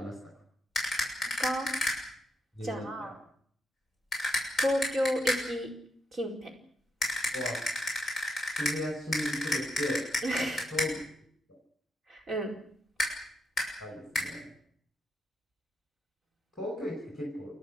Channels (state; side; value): normal; both; correlation 0.79